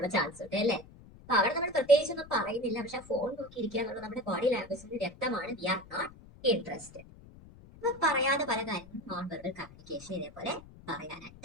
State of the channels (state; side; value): noise; left; rumble, 21 dB below the sound